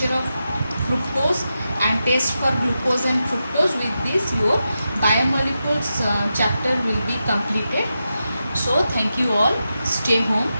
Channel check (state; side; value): inverted; both; correlation -0.89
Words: of fructose and test for glucose and fructose. With this, your biomolecules chapter will be completed. So thank you all. Stay home